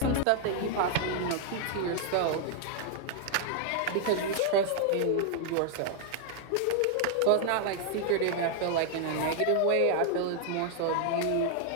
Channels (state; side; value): different; both; correlation 0.00